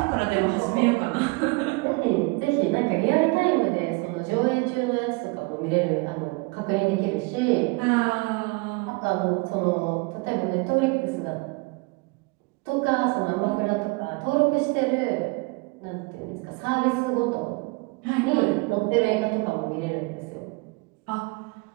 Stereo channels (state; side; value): quieter; left; 27.7 dB